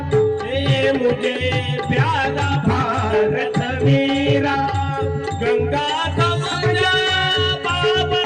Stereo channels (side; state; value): both; identical; correlation 1.00